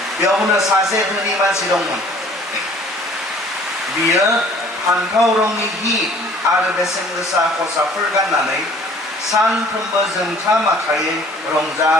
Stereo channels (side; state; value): both; normal; correlation 0.53